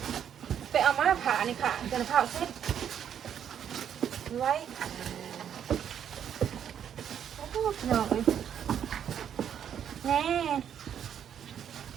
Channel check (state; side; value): quieter; left; 8.9 dB